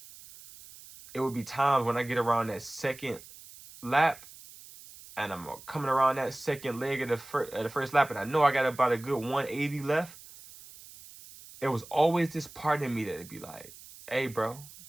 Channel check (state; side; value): noise; right; hiss, 19 dB below the sound